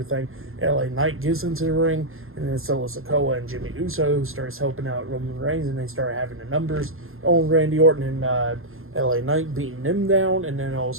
LA Knight gets into the ring, and then Solo Sikoa and Jimmy Uso starts helping out Roman Reigns, and they start having the numbers on Randy Orton and LA Knight beating him down, and then all of a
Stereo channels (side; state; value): left; late; 0.61 ms